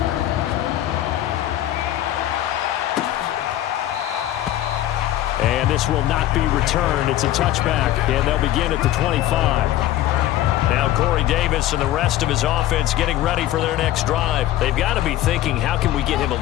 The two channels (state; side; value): quieter; right; 13.6 dB